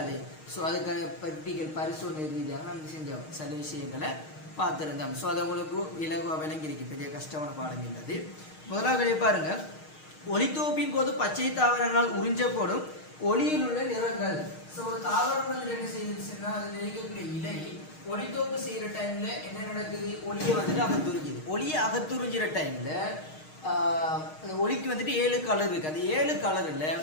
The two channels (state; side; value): late; right; 6.5 ms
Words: ஸோ அதுக்கான பர்டிகல் பரிசோதனை ரீதியாக நம்ம செஞ்சோம், சில விஷயங்களை பார்த்துருந்தோம். ஸோ அது உங்களுக்கு விலங்குவாக விளங்கியிருக்கு, பெரிய கஷ்டமான பாடம் இல்லது. முதலாவது பாருங்க, ஒளித்தொகுப்பின் போது பச்சை தாவரங்களால் உறிஞ்சப்படும் ஒளியில் உள்ள நிறங்கள். ஸோ ஒரு தாவரம் வந்து என்ன செய்யுதுன்னா அது நினைக்கக்கூடிய இலை ஒளித்தொகுப்பு செய்யற டைம்ல என்ன நடக்குது, ஒளியை வந்துட்டு அகத்துறிஞ்சுது. ஒளியை அகத்துறிஞ்சிற டைம்ல ஒளிக்கு வந்துட்டு 7 கலர் இருக்கு. அந்த 7 கலர்ல